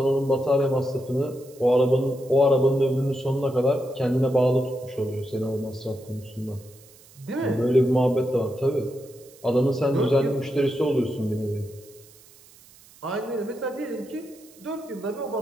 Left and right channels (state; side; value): noise; right; hiss, 25 dB below the sound